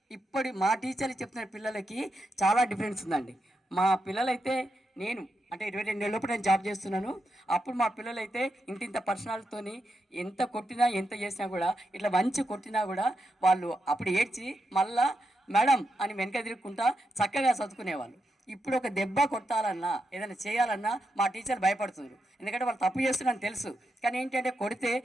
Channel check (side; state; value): both; normal; correlation 0.85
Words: ఇప్పుడు మా టీచర్లు చెప్తున్న పిల్లలకి చాలా డిఫరెన్స్ ఉందండి. మా పిల్లలైతే నేను అంటే 22 ఏళ్ళ లోపు నేను జాబ్ చేస్తున్నాను. అప్పుడు మా పిల్లలైతే ఇంత పర్సనాలిటీతోని ఎంత కొట్టినా ఎంత చేసినా కూడా ఇట్లా మంచి కొట్టినా కూడా వాళ్ళు అప్పుడు ఏడ్చి మళ్ళా మేడం అని వెనక తిరుగుకుంటా చక్కగా చదువుకునేవాళ్ళు. ఇప్పుడు ఒక దెబ్బ కొట్టాలన్నా ఏదైనా చేయాలన్నా మా టీచర్ భయపడుతున్నారు. ఎందుకంటే వాళ్ళు తప్పు చేస్తున్నారని తెలుసు. కానీ ఏంటంటే కొడితే